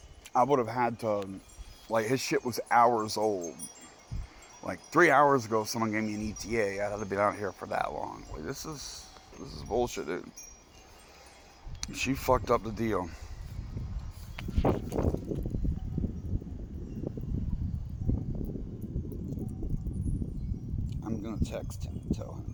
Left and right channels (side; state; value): both; identical; correlation 1.00